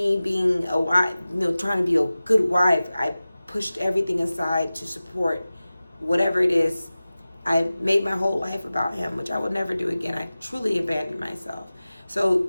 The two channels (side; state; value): both; inverted; correlation -0.97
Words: being a wife, trying to be a good wife. I pushed everything aside to support whatever it is. I made my whole life about him, which I would never do again. I truly abandoned myself. So